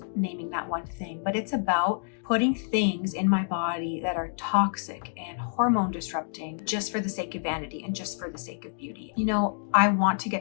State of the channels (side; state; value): right; silent; digital silence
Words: naming that one thing, but it's about putting things in my body that are toxic and hormone disrupting just for the sake of vanity and just for the sake of beauty. I want to